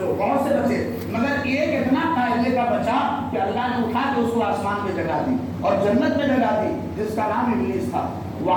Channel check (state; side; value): identical; both; correlation 1.00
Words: بہت سے بچے مگر ایک اتنا قاعدے کا بچا کہ اللہ نے اٹھا کے اس کو آسمان پہ جگہ دی اور جنت میں جگہ دی، جس کا نام ابلیس تھا،